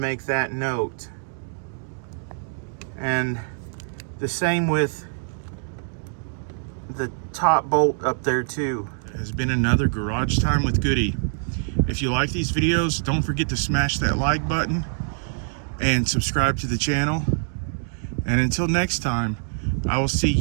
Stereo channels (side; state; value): left; silent; digital silence